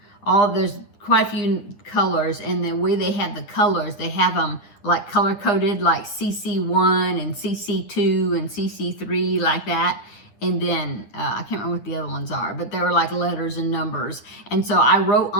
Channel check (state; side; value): late; right; 9.8 ms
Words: there's quite a few colors, and the way they have the colors, they have them like color coded, like CC1 and CC2 and CC3, like that. And then I can't remember what the other ones are, but they were like letters and numbers. And so I wrote